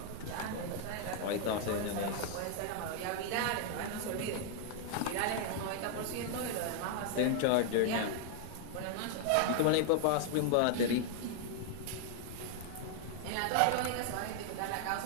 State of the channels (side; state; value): both; different; correlation 0.00